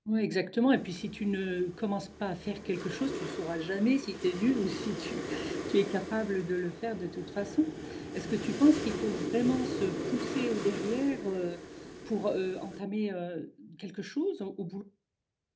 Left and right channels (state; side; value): identical; both; correlation 1.00